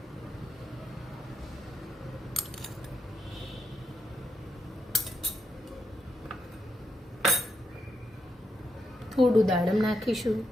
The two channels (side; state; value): both; normal; correlation 0.80